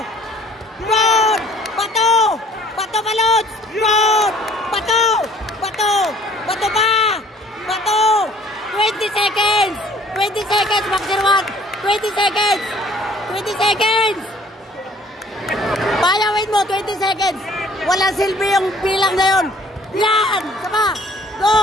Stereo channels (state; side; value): normal; both; correlation 0.56